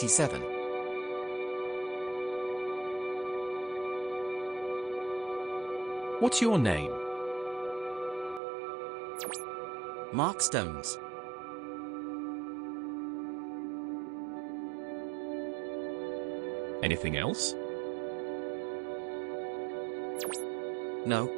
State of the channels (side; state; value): left; drops out; at 8.4 s